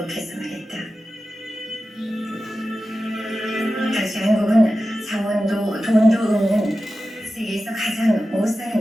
말했다. 당시 한국은 자원도 돈도 없는 세계에서 가장 못 사는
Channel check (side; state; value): both; normal; correlation 0.93